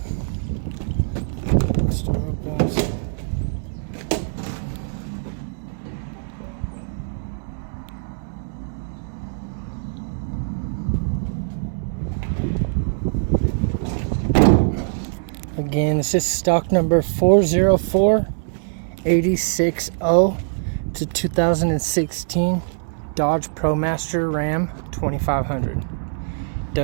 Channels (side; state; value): left; silent; digital silence